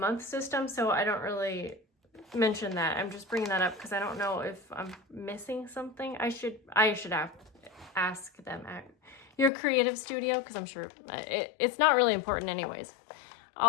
system, so I don't really mention that. I'm just bringing that up because I don't know if I'm missing something. I should ask them at Your Creative Studio because I'm sure it's not really important anyways.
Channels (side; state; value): right; drops out; at 9.5 s